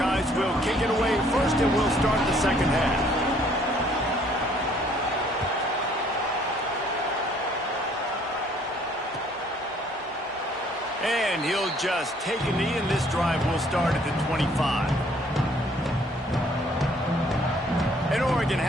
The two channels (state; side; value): normal; both; correlation 0.61